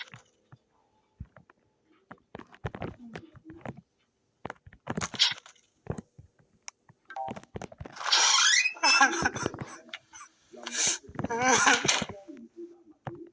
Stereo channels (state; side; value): identical; both; correlation 1.00